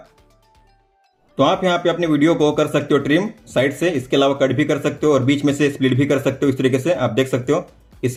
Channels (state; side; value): identical; both; correlation 1.00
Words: तो आप यहाँ पे अपने वीडियो को कर सकते हो ट्रिम साइड से, इसके अलावा कट भी कर सकते हो और बीच में से स्प्लिट भी कर सकते हो, इस तरीके से आप देख सकते हो।